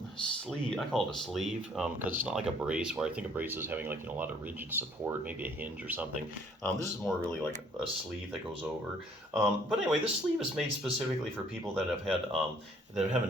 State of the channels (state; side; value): normal; both; correlation 0.60